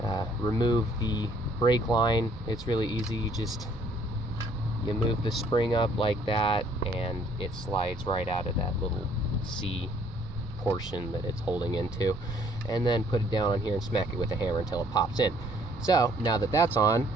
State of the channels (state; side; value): normal; both; correlation 0.62